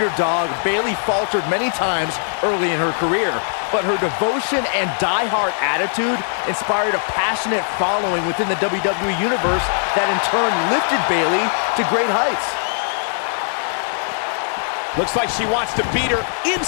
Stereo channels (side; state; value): right; silent; 66 dB below the other